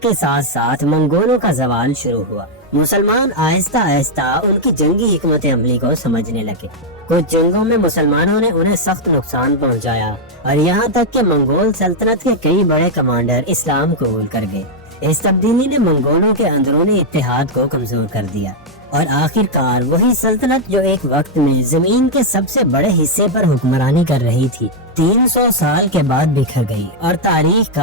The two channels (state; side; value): normal; both; correlation -0.01